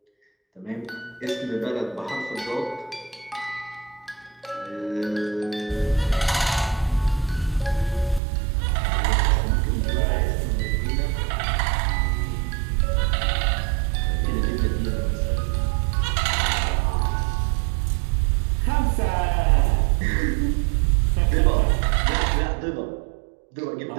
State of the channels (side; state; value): left; drops out; at 8.2 s